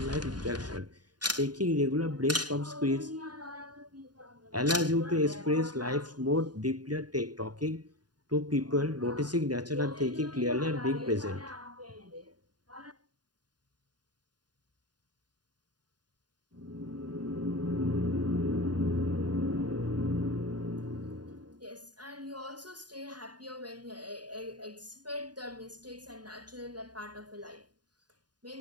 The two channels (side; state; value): left; late; 0.70 ms